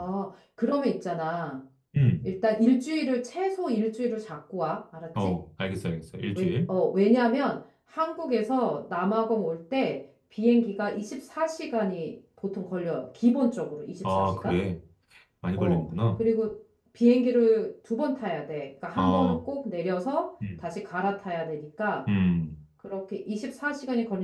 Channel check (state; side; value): identical; both; correlation 1.00